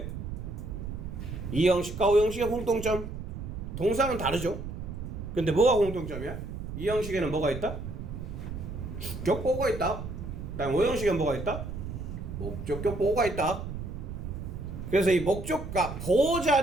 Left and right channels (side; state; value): right; noise; rumble, 7 dB below the sound